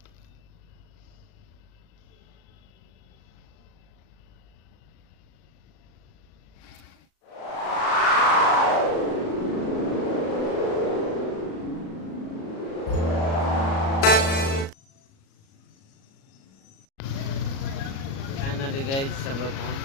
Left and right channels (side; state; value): right; late; 37 ms